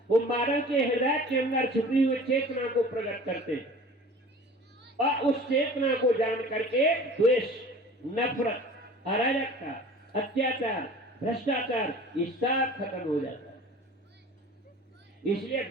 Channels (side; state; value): both; normal; correlation 0.43